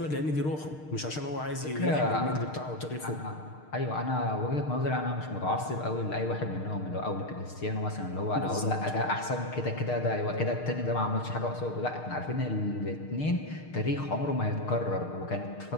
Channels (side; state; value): right; late; 6.6 ms